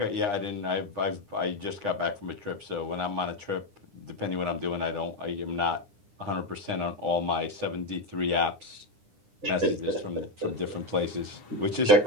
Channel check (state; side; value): late; left; 9.8 ms